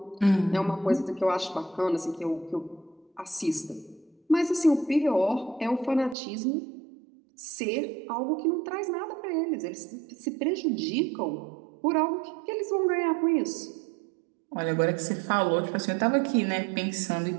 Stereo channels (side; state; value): left; drops out; at 6.2 s